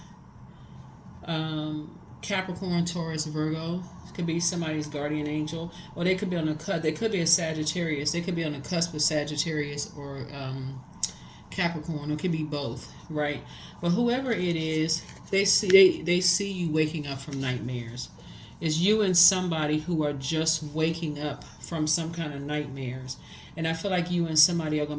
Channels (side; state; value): both; identical; correlation 1.00